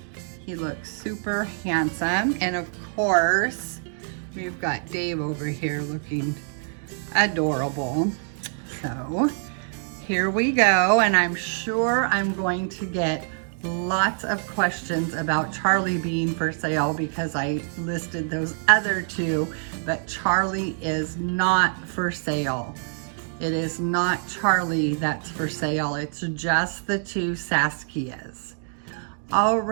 He looks super handsome. And of course, we've got Dave over here looking adorable. So here we go. And I'm sure I'm going to get lots of questions about Charlie being for sale because I listed those other two, but Charlie is not for sale. It is not Charlie that's for sale. It's just the two Saskias. All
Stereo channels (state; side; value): silent; left; 62 dB below the other